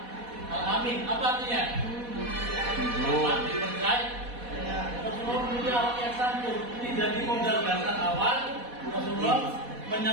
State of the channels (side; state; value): left; late; 4.1 ms